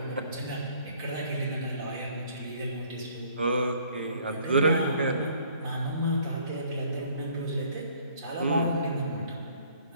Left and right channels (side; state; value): both; inverted; correlation -0.59